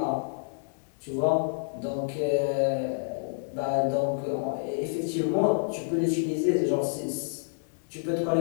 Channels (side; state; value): right; silent; digital silence